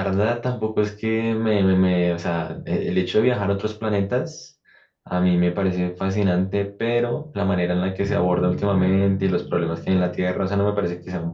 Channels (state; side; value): identical; both; correlation 1.00